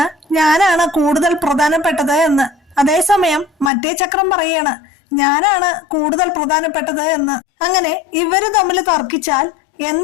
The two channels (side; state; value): right; drops out; at 3.7 s